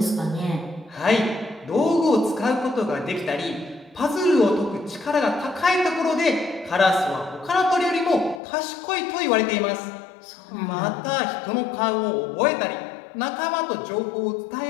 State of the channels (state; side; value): drops out; right; at 8.4 s